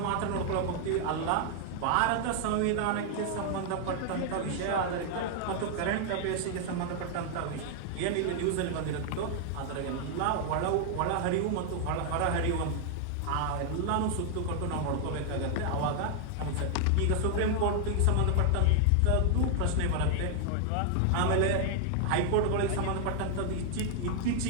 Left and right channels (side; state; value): both; different; correlation 0.00